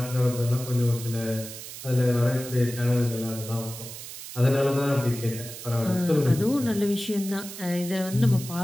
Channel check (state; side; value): noise; right; hiss, 11 dB below the sound